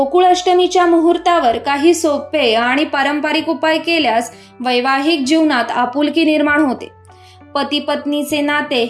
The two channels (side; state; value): both; identical; correlation 1.00